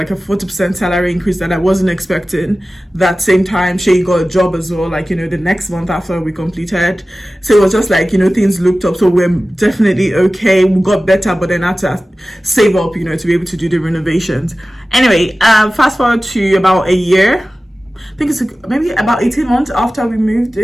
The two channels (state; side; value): normal; both; correlation 0.96